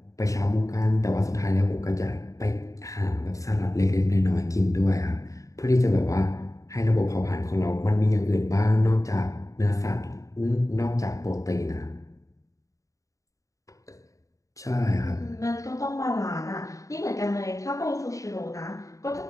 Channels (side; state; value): right; late; 0.16 ms